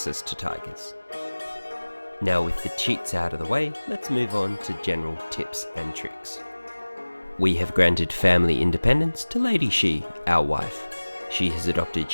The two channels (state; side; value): inverted; both; correlation -1.00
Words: to tigers. Now with the cheats out of the way, let's move on to general tips and tricks. We have granted family independence to Lady Shi, our wife. She has adopted